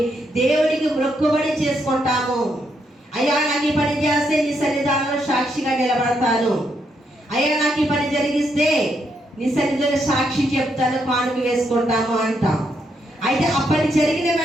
దేవుడికి మొక్కుబడి చేసుకుంటాము. అయ్యా నాకు ఈ పని చేస్తే నీ సన్నిధానంలో సాక్షిగా నిలబడతాను, అయ్యా నాకు ఈ పని జరిగిస్తే నీ సన్నిధిలో సాక్షి చెప్తాను, కానుక వేసుకుంటాము అంటాం. అయితే ఆ పని జరిగిన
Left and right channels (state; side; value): normal; both; correlation 0.78